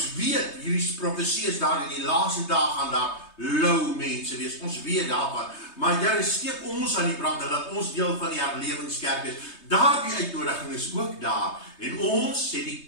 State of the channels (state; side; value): late; right; 3.2 ms